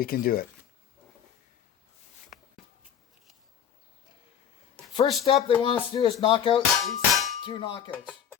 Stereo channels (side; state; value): right; quieter; 8.7 dB